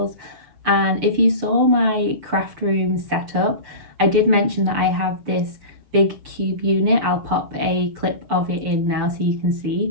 And if you saw my craft room setup, I did mention that I have this big cube unit. I'll pop a clip of it in now so you can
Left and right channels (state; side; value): late; left; 6.7 ms